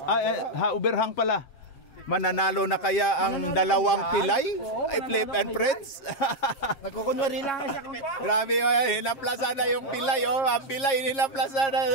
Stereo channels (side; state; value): right; late; 7.7 ms